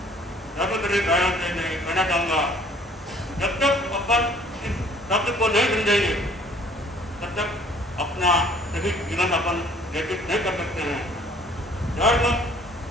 धर्मप्रिय भाइयों से मैं कहना चाहूँगा, जब तक अपन इस शब्द को नहीं समझेंगे तब तक अपना सही जीवन अपन व्यतीत नहीं कर सकते हैं। धर्म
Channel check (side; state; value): both; normal; correlation 0.56